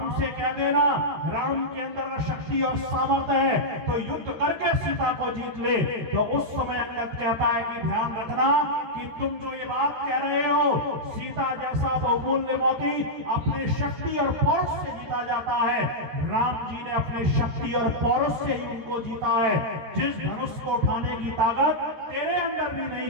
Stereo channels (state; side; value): late; left; 13 ms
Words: से कह देना, राम के अंदर शक्ति और सामर्थ्य है तो युद्ध करके सीता को जीत ले। तो उस समय अंगद कहता है कि ध्यान रखना कि कि तुम जो ये बात कह रहे हो सीता जैसा बहुमूल्य मोती अपने शक्ति और पौरुष से जीता जाता है, राम जी ने अपने शक्ति और पौरुष से ही उनको जीता है। जिस धनुष को उठाने की ताकत तेरे अंदर भी नहीं